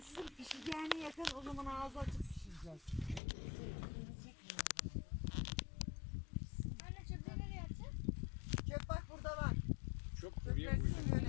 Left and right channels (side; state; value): right; drops out; at 3.2 s